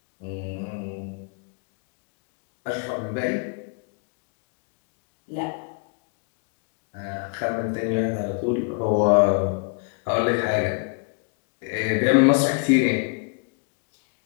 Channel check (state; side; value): quieter; right; 37.2 dB